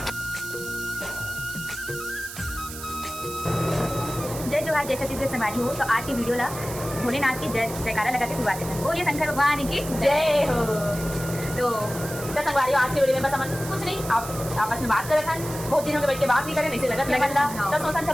जय जोहार जय छत्तीसगढ़ समारी हो। तो आज की वीडियो ला भोलेनाथ की जय जयकारा लगा के शुरुआत करते हैं। बोलिए शंकर भगवान की जय हो। तो संगवारी आज की वीडियो में बस हम कुछ नहीं आप आपस में बात कर रहे थे, बहुत दिनों के बैठ के बात नहीं करें, ऐसे लगा तो सोचन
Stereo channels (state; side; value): noise; right; hiss, 11 dB below the sound